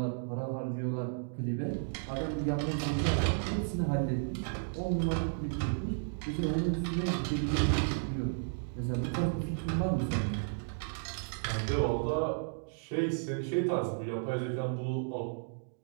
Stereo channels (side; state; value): left; silent; digital silence